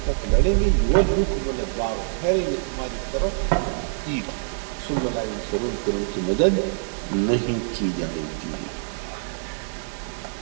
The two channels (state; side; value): silent; left; digital silence